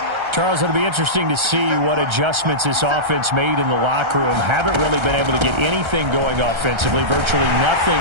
Charles, it'll be interesting to see what adjustments this offense made in the locker room. Haven't really been able to get anything going offensively, virtually nothing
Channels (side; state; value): left; late; 1.3 ms